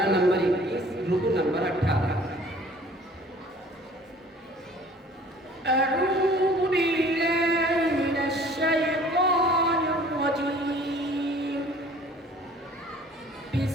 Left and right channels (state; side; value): normal; both; correlation 0.51